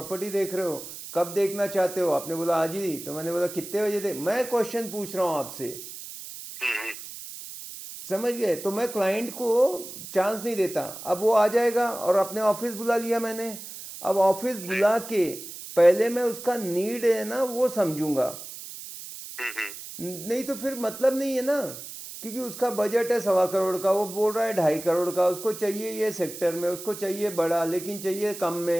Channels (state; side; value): noise; right; hiss, 12 dB below the sound